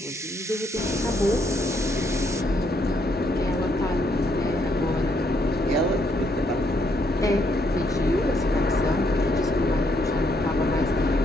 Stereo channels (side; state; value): both; normal; correlation 0.73